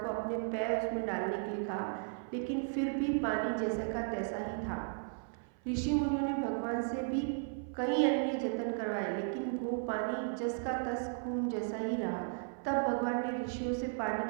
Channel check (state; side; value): silent; left; 54 dB below the other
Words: अपने पैर उसमें डालने के लिए कहा, लेकिन फिर भी पानी जैसा का तैसा ही था। ऋषि मुनियों ने भगवान से भी कई अन्य जतन करवाए, लेकिन वो पानी जस का तस खून जैसा ही रहा। तब भगवान ने ऋषियों से पानी